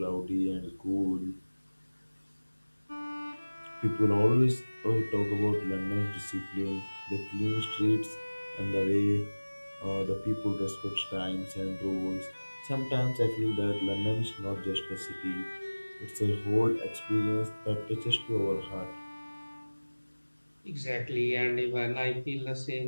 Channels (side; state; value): both; inverted; correlation -1.00